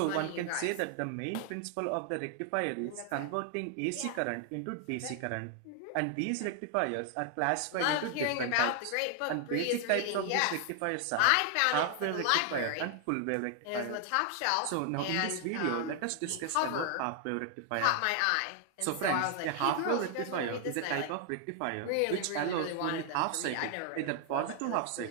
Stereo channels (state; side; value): different; both; correlation 0.00